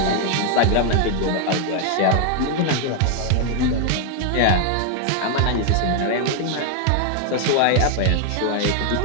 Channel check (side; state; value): both; different; correlation 0.00